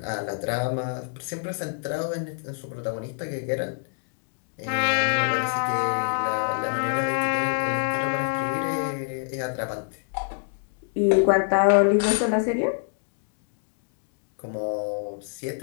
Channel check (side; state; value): right; silent; 61 dB below the other